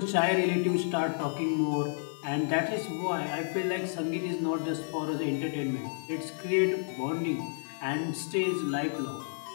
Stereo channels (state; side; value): silent; right; 57 dB below the other